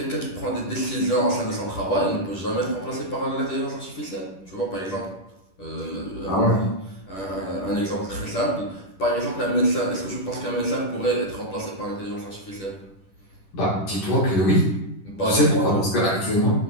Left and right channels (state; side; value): late; right; 10 ms